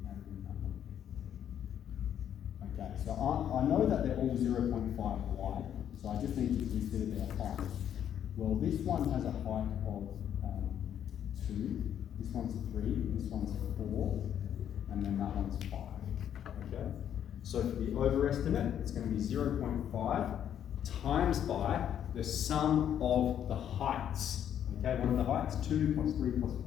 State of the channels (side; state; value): right; quieter; 9.7 dB